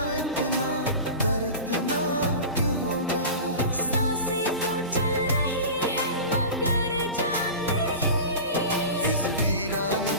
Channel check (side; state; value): both; inverted; correlation -0.31